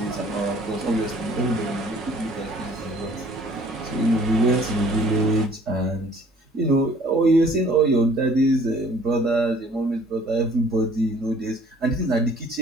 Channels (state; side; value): normal; both; correlation 0.55